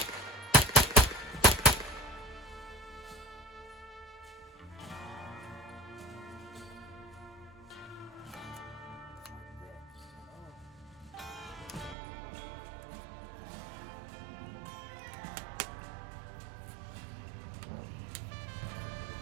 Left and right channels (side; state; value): left; drops out; at 12.0 s